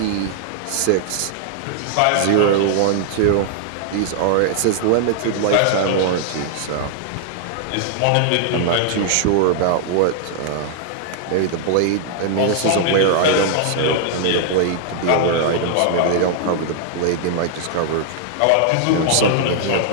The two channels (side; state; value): both; different; correlation -0.01